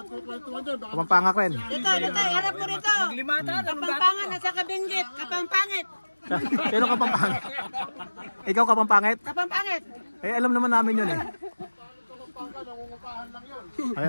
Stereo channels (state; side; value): inverted; both; correlation -1.00